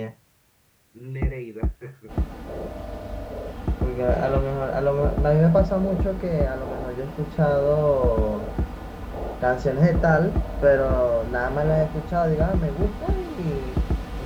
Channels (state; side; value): identical; both; correlation 1.00